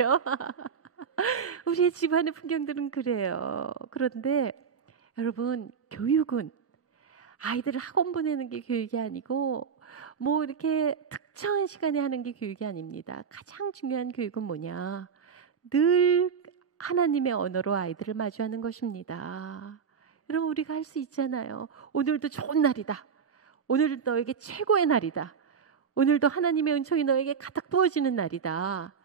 우리의 집안의 풍경들은 그래요. 그런데 여러분, 교육은 아이들을 학원 보내는 게 교육이 아니고 뭐 이렇게 특정한 시간에 하는 게 교육이 아닙니다. 가장 중요한 교육은 뭐냐? 늘 하나님의 언어로 아이들을 마주하는 것입니다. 여러분, 우리가 할 수 있잖아요. 오늘도 좋은 날이다. 오늘도 너에게 최고의 날이다. 오늘도 하나님의 은총이 너에게 가득 부어지는 날이다.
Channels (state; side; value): quieter; left; 6.6 dB